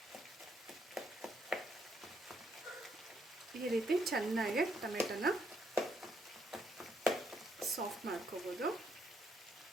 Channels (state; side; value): normal; both; correlation 0.75